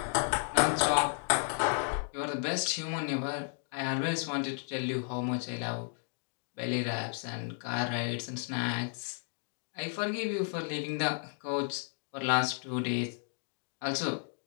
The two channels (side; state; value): right; silent; 56 dB below the other